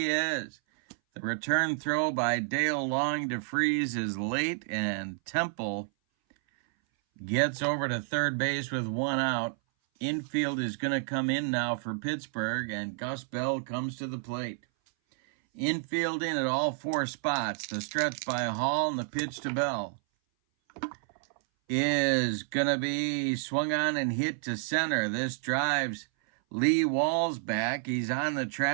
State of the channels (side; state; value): left; silent; 58 dB below the other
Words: is. The return throw by Dale Long to Freese is late, and Temple gets over to third base with 1 out. Infield is going to come in now for Pittsburgh, and Gus Bell comes to the plate. Infield in at all 4 spots. The stretch by Hall and the pitch to Bell is going to be swung on and hit to center. This drives Lee Walls back. He's on the